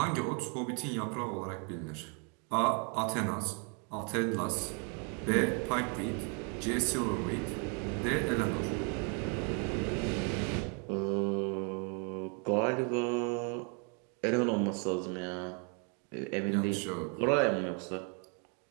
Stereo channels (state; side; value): quieter; left; 37.4 dB